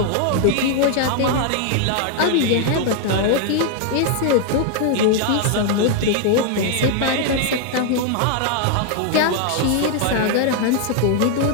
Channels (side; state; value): both; different; correlation 0.00